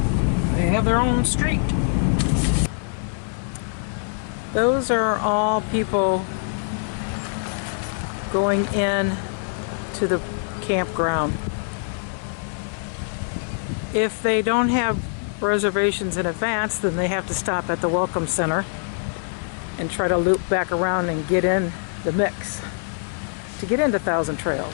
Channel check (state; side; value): silent; right; 62 dB below the other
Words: They have their own street. Those are all people going in to the campground. If they don't have reservations in advance, then they have to stop at the Welcome Center and try to loop back around and get in the mix to get into Thousand